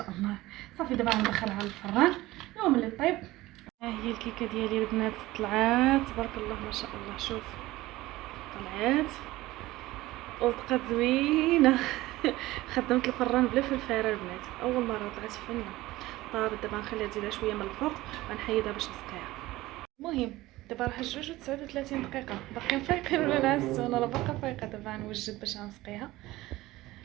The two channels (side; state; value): left; quieter; 18.0 dB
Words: الله. صافي دابا غندخلها للفران يوم اللي طيب. ها هي الكيكه ديالي البنات طلعات تبارك الله ما شاء الله. شوف طلعات وصدقات زوينه خدمت الفران بلا فلفله البنات، اول مره طلعت فنه. طابت دابا نخليها تزيد شويه من الفوق ونحيدها باش نسقيها. المهم دابا راه 2:39 دقيقه. باقيين فايقين ولا نعسوا؟ انا راه باقا فايقه. دابا غنوجد باش غنسقيها